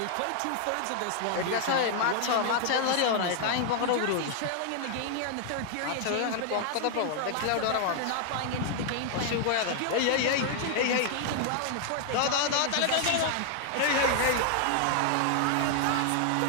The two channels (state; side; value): different; both; correlation 0.00